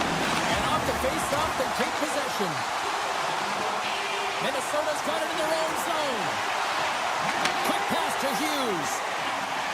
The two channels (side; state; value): both; identical; correlation 1.00